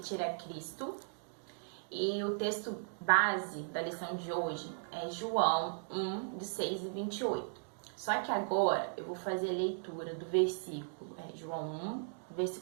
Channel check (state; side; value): silent; left; digital silence